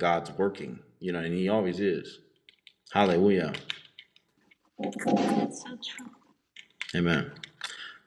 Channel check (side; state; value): both; identical; correlation 1.00